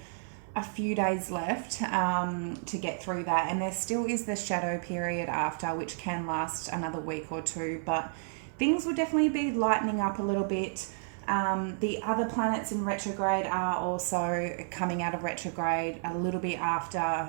a few days left to get through that, and there still is the shadow period after, which can last another week or two, but things will definitely be lightening up a little bit. The other planets in retrograde are also coming out of retrograde a little bit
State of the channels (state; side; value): silent; left; 56 dB below the other